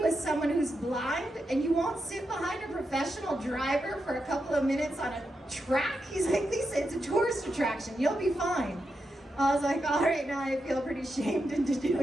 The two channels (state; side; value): normal; both; correlation 0.86